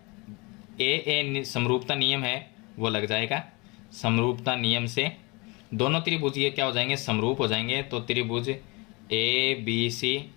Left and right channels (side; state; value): right; quieter; 27.2 dB